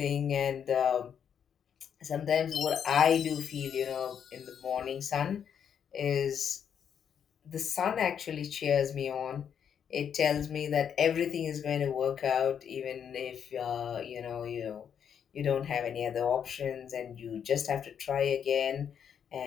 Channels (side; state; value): right; quieter; 8.1 dB